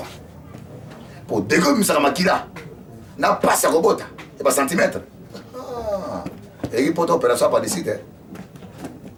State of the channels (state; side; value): identical; both; correlation 1.00